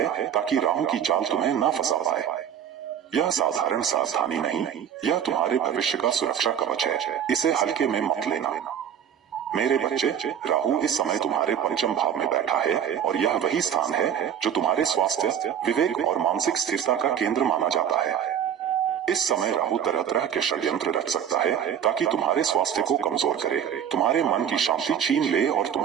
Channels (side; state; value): left; quieter; 8.9 dB